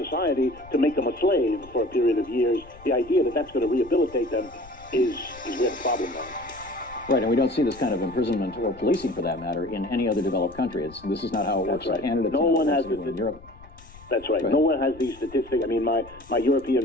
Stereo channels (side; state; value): left; noise; rumble, 21 dB below the sound